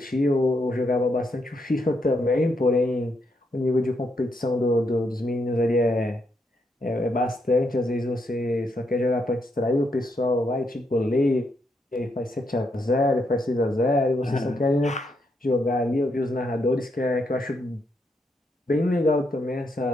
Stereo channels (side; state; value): both; normal; correlation 0.78